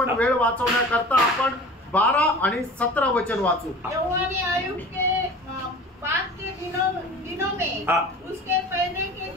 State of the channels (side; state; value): both; normal; correlation 0.40